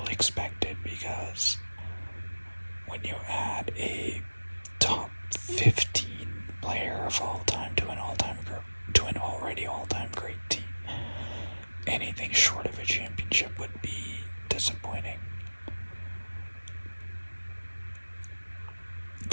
expected because when you add a top 15 player of all time to an already all-time great team, anything short of a championship would be disappointing.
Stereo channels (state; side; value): inverted; both; correlation -1.00